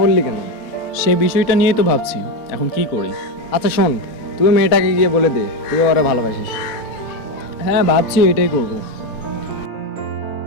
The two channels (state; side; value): late; right; 4.0 ms